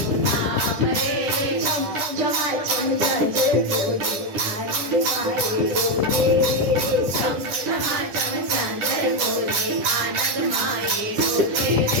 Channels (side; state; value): left; late; 10 ms